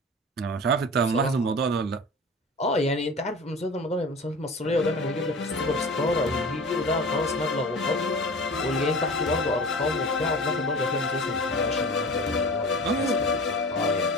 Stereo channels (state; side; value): normal; both; correlation 0.36